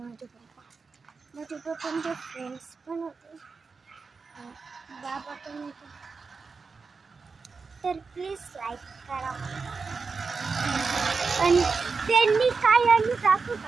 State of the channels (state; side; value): quieter; left; 4.7 dB